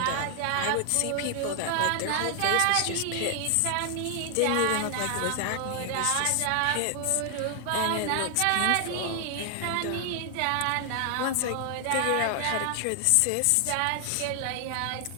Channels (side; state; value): both; different; correlation 0.00